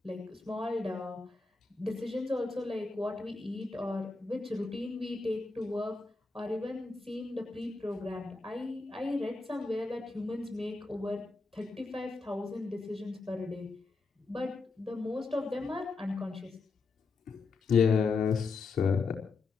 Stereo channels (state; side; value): quieter; right; 3.9 dB